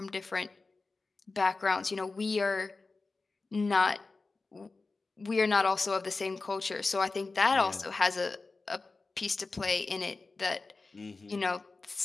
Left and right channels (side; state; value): right; quieter; 3.7 dB